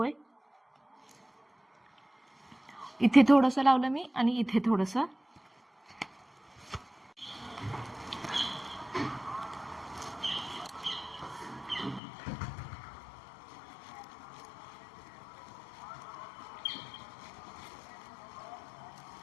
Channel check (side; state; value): right; drops out; at 12.0 s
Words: इथे थोडंसं लावलं मी आणि इथे थोडंसं.